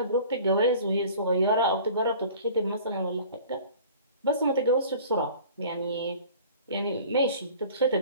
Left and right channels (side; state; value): both; inverted; correlation -0.46